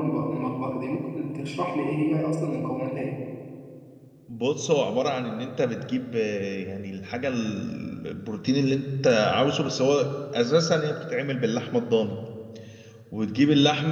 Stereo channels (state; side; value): identical; both; correlation 1.00